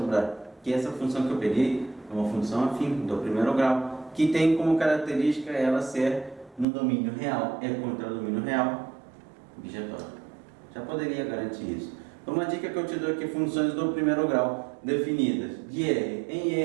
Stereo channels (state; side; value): drops out; left; at 6.7 s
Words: Que essa função que eu peguei é uma função afim do primeiro grau, que tem como característica ela ser no domínio real. É contra o domínio real, bijetória. Já poderia garantir isso. Então, uma dica que eu te dou aqui: funções do primeiro grau definidas de R em